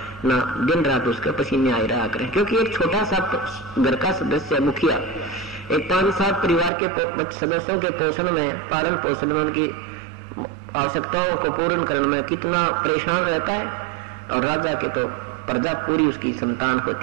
ना दिन रात उसके पसीने आए रहा करें, क्योंकि एक छोटा सा घर का सदस्य मुखिया एक 5-7 परिवार के सदस्यों के पोषण में, पालन पोषण में, उनकी आवश्यकताओं को पूर्ण करने में कितना परेशान रहता है, और राजा के तो प्रजा पूरी उसकी संतान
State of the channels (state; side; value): drops out; left; at 6.7 s